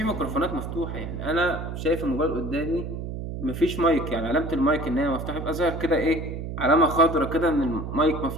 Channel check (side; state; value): right; noise; hum, 6 dB below the sound